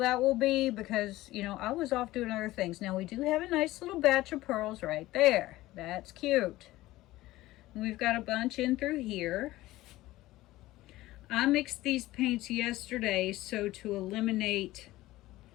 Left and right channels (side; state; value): right; quieter; 17.2 dB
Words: will be because, you know, I was off doing other things. Now we do have a nice little batch of pearls right there. That's cute. We've got a bunch in through here. I mixed these paints yesterday so to eliminate,